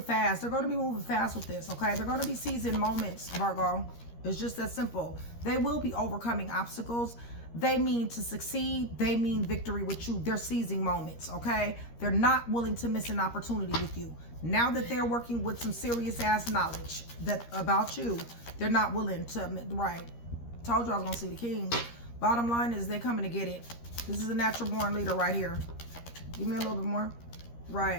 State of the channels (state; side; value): late; right; 13 ms